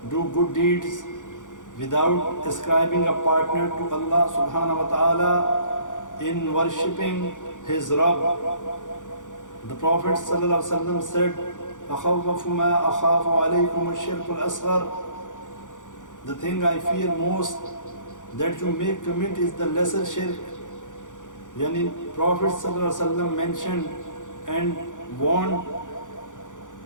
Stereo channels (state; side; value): late; right; 0.87 ms